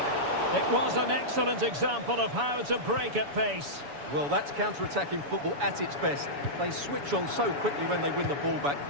It was an excellent example of how to break at pace. Well, that's counter-attacking football at its best. They switch on so quickly when they win the ball back.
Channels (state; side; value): late; left; 7.0 ms